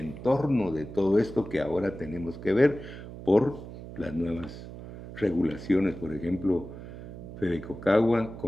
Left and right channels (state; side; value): noise; right; hum, 12 dB below the sound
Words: de todo esto que ahora tenemos que ver por las nuevas regulaciones. Por ejemplo, Fedecocagua